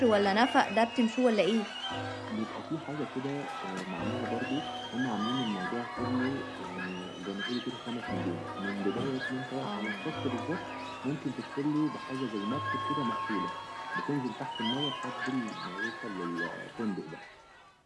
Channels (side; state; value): both; identical; correlation 1.00